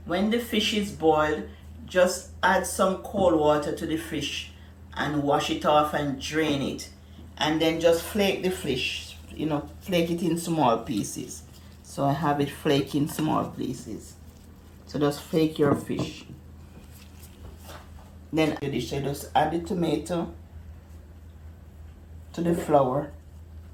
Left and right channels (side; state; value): both; identical; correlation 1.00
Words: When the fish is boiled, just add some cold water to the fish and wash it off and drain it. And then just flake the fish, flake it in small pieces. So I have it flake in small pieces. So just flake your fish. Then the dish, I just add the tomato to the flour,